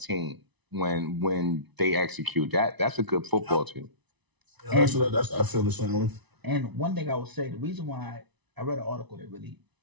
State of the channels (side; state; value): left; late; 1.0 ms